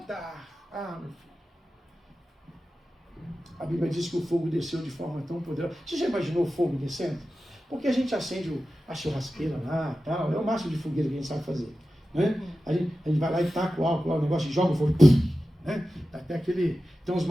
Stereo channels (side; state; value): both; normal; correlation 0.93